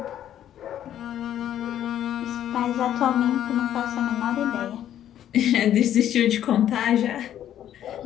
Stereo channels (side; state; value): right; quieter; 11.1 dB